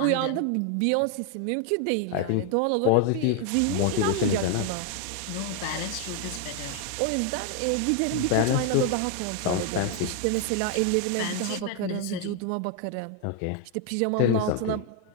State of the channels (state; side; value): different; both; correlation 0.00